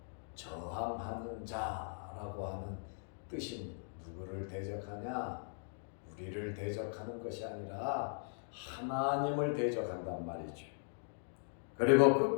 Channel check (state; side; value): silent; right; digital silence